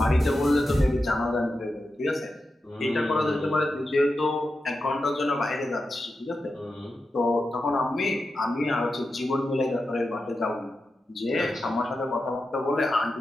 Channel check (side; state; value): both; normal; correlation 0.90